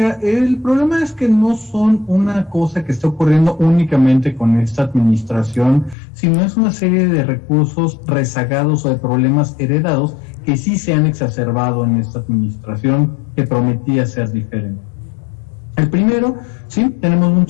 el problema es que no son una cosa que está ocurriendo únicamente con esta administración, sino es una serie de recursos rezagados o de problemas heredados que sí se han exacerbado en esta administración que prometía ser diferente. El primero, sí, tenemos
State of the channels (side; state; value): right; drops out; at 6.0 s